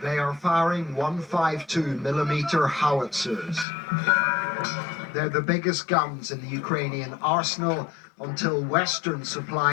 They are firing 152mm howitzers. They're the biggest guns in the Ukrainian arsenal until Western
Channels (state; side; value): drops out; right; at 3.7 s